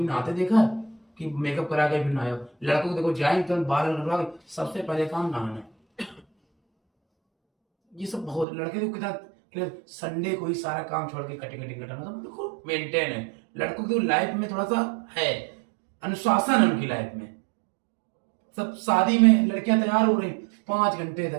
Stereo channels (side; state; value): left; drops out; at 8.5 s